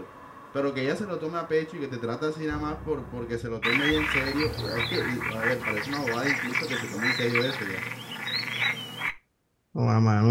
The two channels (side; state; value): both; identical; correlation 1.00